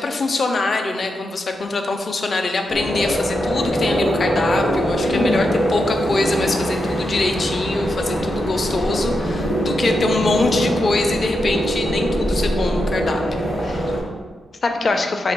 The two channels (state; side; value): normal; both; correlation 0.86